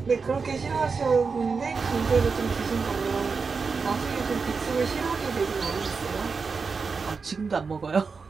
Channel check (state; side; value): quieter; left; 4.9 dB